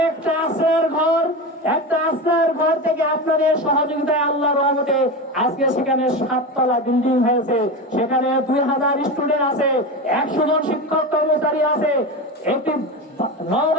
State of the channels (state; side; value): normal; both; correlation 0.23